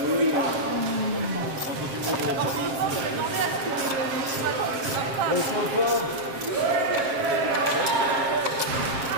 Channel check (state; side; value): late; left; 7.6 ms